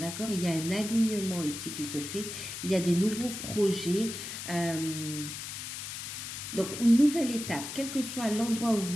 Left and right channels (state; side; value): noise; left; hiss, 7 dB below the sound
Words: Il y a un alignement ici qui se fait. Il y a des nouveaux projets. Donc, une nouvelle étape, quel que soit l'endroit où